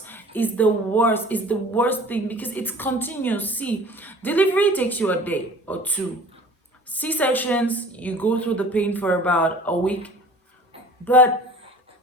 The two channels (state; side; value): normal; both; correlation 0.45